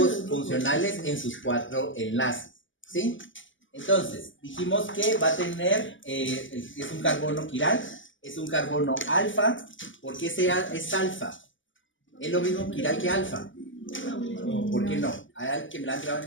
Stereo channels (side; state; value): right; late; 0.56 ms